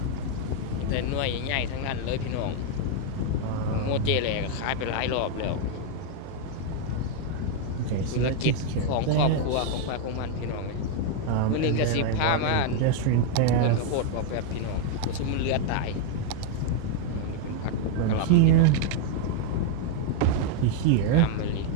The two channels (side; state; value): both; different; correlation 0.00